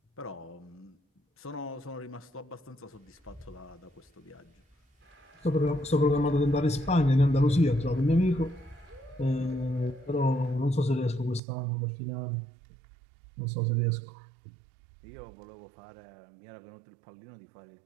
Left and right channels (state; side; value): drops out; left; at 11.4 s